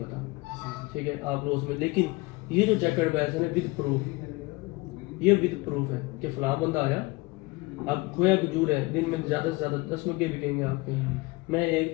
ठीक है, आप रोज में। लेकिन ये जो चेक एंड बैलेंस है विद प्रूफ, ये विद प्रूफ है कि फलां बंदा आया, अब खोया खजूर है, दिन में ज़्यादा से ज़्यादा 10 मग्गे बिकेंगे आपके। मैं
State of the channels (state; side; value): quieter; right; 23.5 dB